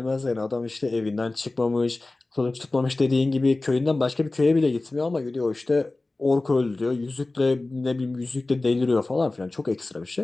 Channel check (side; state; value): right; quieter; 3.1 dB